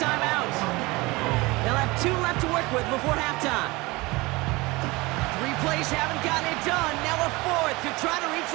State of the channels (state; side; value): quieter; left; 22.8 dB